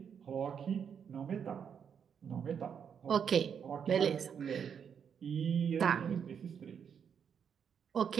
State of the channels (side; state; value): left; quieter; 7.5 dB